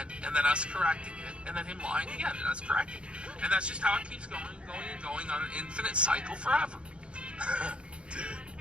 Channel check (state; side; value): late; left; 0.057 ms